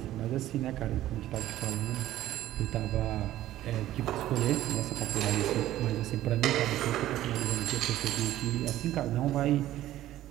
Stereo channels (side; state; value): left; quieter; 14.0 dB